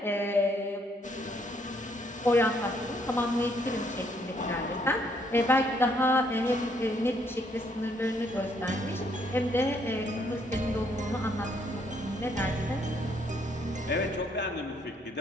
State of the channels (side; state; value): both; normal; correlation 0.69